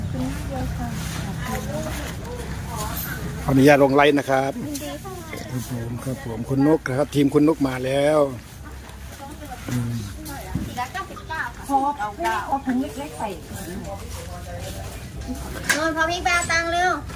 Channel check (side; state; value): both; identical; correlation 1.00